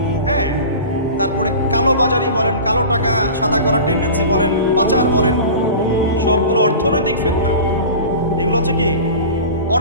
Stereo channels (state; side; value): inverted; both; correlation -0.35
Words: হ্যাঁ, তারপরে কালো বাজারি বলেন, কালো টাকা সাদা করার টেন্ডেন্সি বলেন, পাচার বলেন, সবগুলো অর্থনৈতিক ফিতনা। এগুলো হচ্ছে কি?